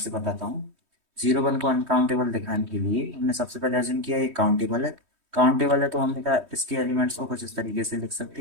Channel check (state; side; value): late; left; 3.2 ms